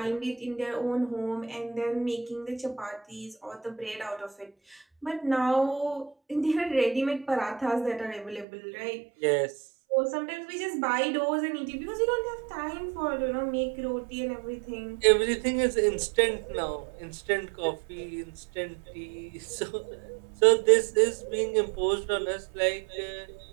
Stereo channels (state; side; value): drops out; left; at 8.5 s